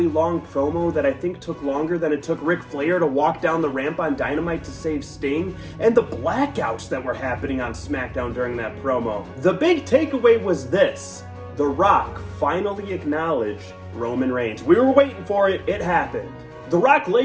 long promo that I think took longer than it took Ric Flair to walk down the ramp on Dynamite to save Sting, and the blackouts that were happening on SmackDown during that promo, the big takeaway was this. The Rock finally acknowledged Roman Reigns. We were waiting for it. It happened. The Rock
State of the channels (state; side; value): identical; both; correlation 1.00